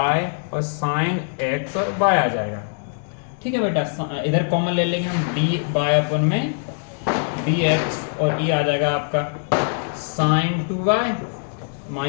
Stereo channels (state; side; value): silent; right; digital silence